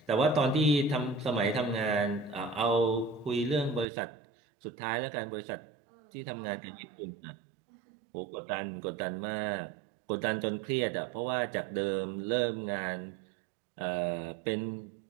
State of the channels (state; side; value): drops out; left; at 3.9 s